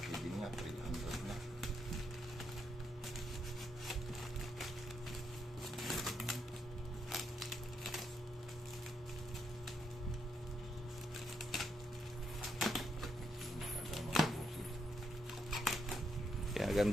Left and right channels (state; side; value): normal; both; correlation 0.79